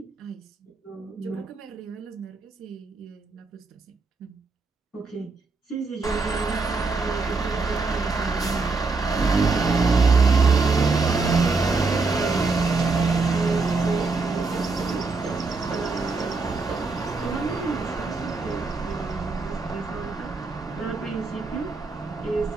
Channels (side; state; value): left; quieter; 4.0 dB